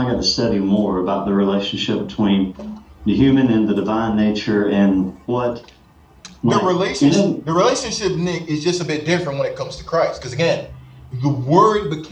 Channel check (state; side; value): identical; both; correlation 1.00